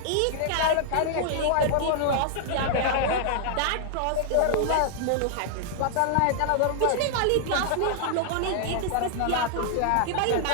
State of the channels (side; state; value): both; different; correlation -0.01